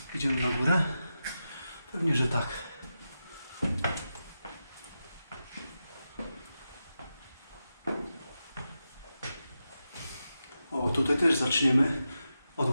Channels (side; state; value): both; inverted; correlation -0.90